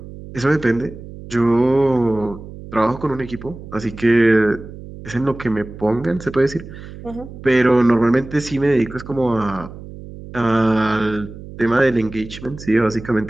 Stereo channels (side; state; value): right; noise; hum, 14 dB below the sound